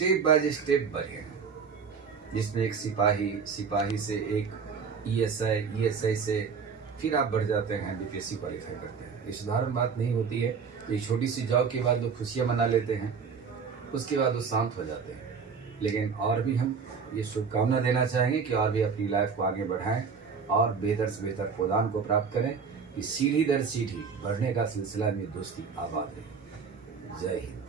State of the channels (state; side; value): quieter; left; 5.8 dB